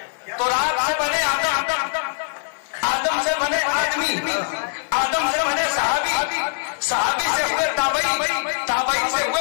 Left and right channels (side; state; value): right; silent; digital silence